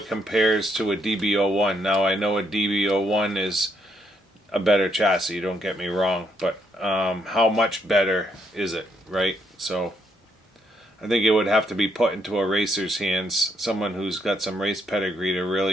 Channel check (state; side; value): normal; both; correlation 0.75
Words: compares to a DB01. Now I know a DB01 is a better chassis, don't get me wrong, but how much better is it, right? So I think it would have to be put into a racer's hands, someone who's got some race pedigree, to